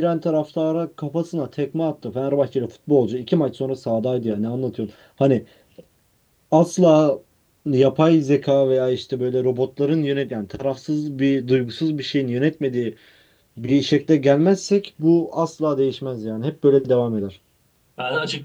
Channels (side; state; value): both; identical; correlation 1.00